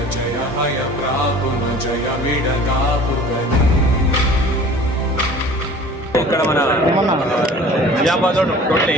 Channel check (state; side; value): normal; both; correlation 0.45